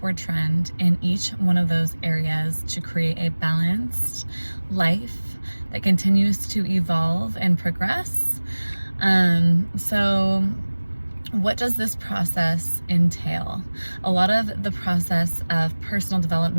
trend in each one of those areas to create a balanced life that continues to evolve and progress. So what does this process entail? A lot of the process of personal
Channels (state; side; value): inverted; both; correlation -1.00